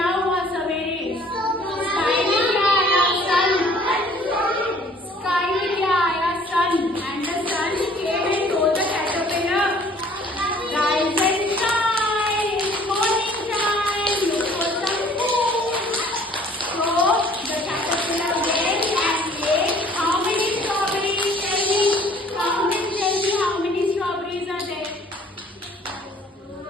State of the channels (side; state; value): both; normal; correlation 0.55